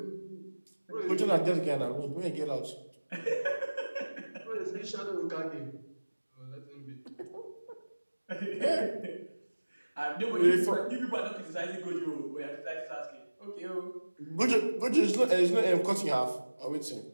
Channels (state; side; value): inverted; both; correlation -1.00